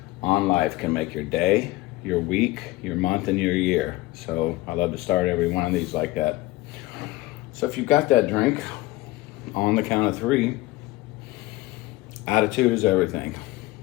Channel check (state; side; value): quieter; right; 19.2 dB